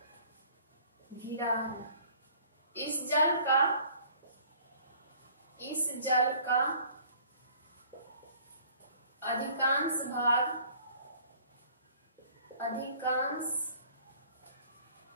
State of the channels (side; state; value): both; inverted; correlation -0.54